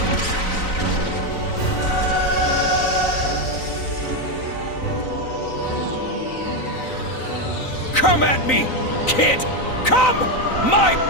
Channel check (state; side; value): late; right; 3.9 ms